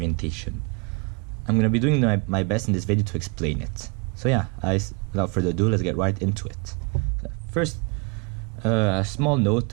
I'm going to be doing my best in this video to explain it. So yeah, without further ado, let's get right into it. First, a small note,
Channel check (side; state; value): left; quieter; 31.5 dB